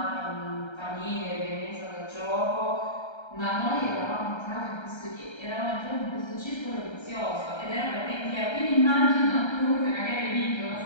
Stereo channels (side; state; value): right; late; 1.3 ms